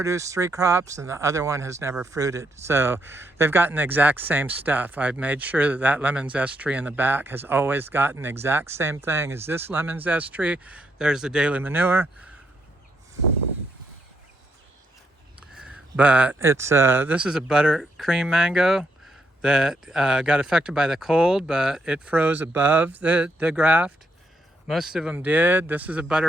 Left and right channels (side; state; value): both; normal; correlation 0.77